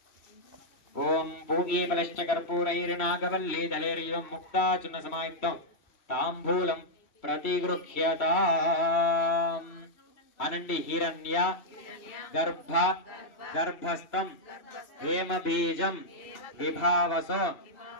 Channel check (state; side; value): late; right; 3.1 ms